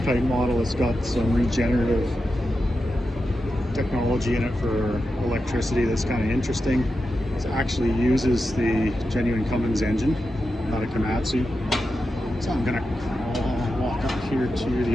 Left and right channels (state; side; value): normal; both; correlation 0.89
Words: model. It's got some regenerative technology in it for electricity that's kind of interesting. It actually uses the genuine Cummins engine, not a Komatsu. So I'm gonna walk up here to